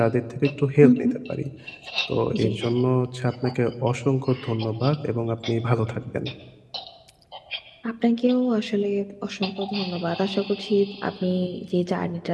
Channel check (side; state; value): both; identical; correlation 1.00